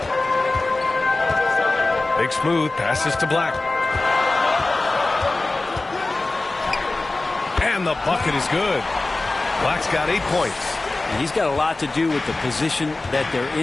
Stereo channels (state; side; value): quieter; right; 3.1 dB